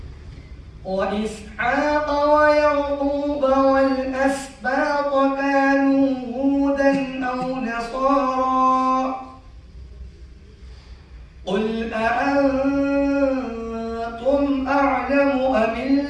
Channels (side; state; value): both; identical; correlation 1.00